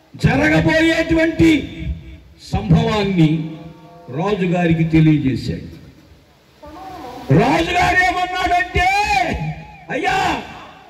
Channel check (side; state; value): both; identical; correlation 1.00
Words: జరగబోయేటువంటి సంభవాన్ని రాజుగారికి తెలియజేశాడు. రాజుగారు ఏమన్నాడంటే, అయ్యా